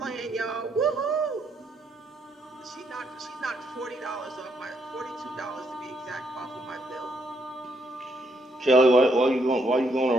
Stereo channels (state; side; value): normal; both; correlation 0.74